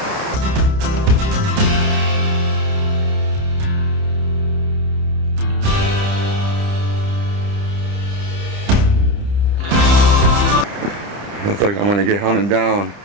Looks like I'm gonna get hunted down.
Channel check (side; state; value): left; late; 30 ms